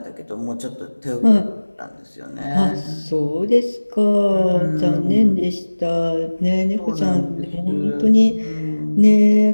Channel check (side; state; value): both; inverted; correlation -1.00